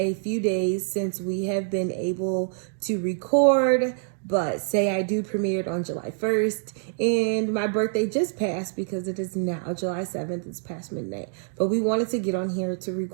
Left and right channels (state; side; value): silent; left; digital silence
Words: few days since we have been able to record, but Say I Do premiered on July 1st, and my birthday just passed because it is now July 7th, it's past midnight. But we wanted to get on here to